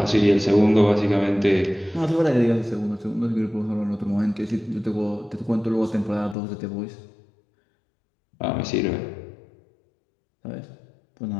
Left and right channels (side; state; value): right; drops out; at 6.4 s